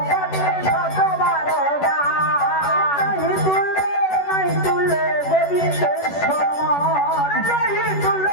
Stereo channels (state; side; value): late; right; 11 ms